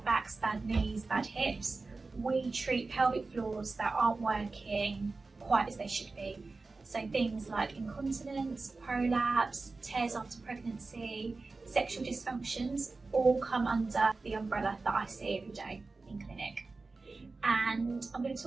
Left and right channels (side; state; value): left; quieter; 3.8 dB